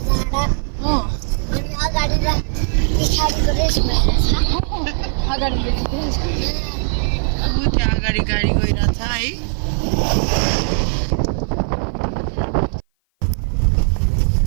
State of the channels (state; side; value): silent; left; 55 dB below the other